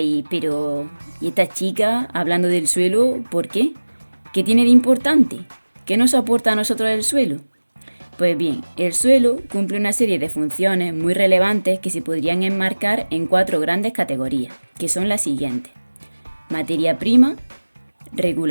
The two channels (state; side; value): inverted; both; correlation -1.00